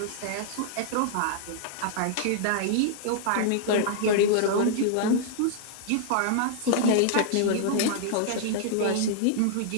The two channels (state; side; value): different; both; correlation -0.01